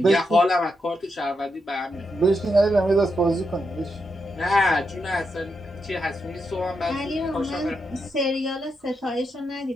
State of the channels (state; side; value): normal; both; correlation 0.83